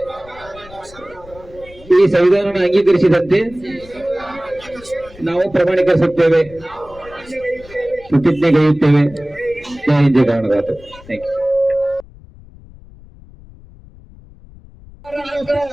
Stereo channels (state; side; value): noise; left; rumble, 21 dB below the sound